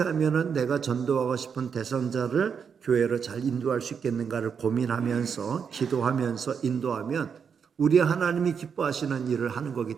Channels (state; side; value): quieter; left; 6.7 dB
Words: 하면 내가 전도하고 싶은 대상자를 교회로 잘 인도할 수 있겠는가를 고민하면서 기도하면서 인도하면 우리 하나님이 기뻐하시는 일을 하는